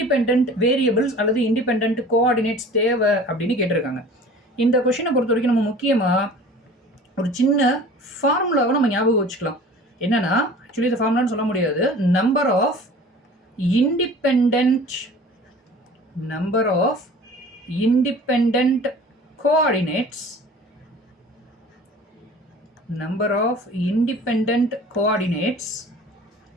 variables அல்லது இண்டிபெண்ட் கோஆர்டினேட்ஸ் தேவை அப்படின்னு கேட்டிருக்காங்க. இந்த கொஷினை பொறுத்த வரைக்கும் நம்ம முக்கியமாக ஒரு சின்ன ஃபார்முலாவை நம்ம ஞாபகம் வச்சுக்கலாம். என்னன்னா, ஆக்சுவலி இந்த ஃபார்முலான்னு சொல்ல முடியாது. Number of independent coordinates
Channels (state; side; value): normal; both; correlation 0.44